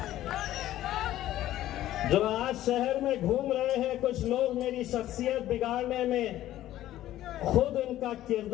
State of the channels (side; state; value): right; quieter; 13.7 dB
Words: जो आज शहर में घूम रहे हैं कुछ लोग मेरी शख्सियत बिगाड़ने में, खुद उनका